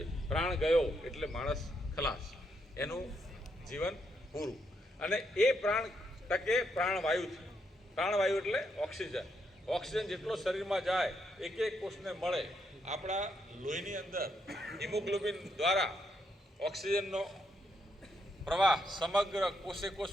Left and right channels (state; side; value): normal; both; correlation 0.78